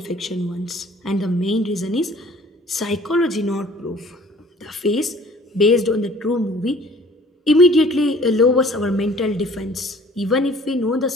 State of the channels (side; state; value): both; normal; correlation 0.53